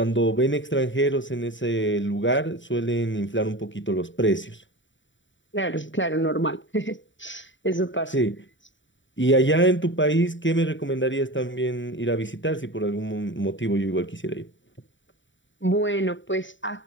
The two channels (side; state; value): right; late; 0.55 ms